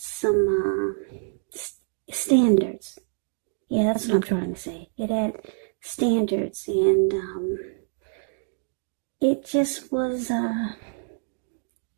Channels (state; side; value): silent; left; digital silence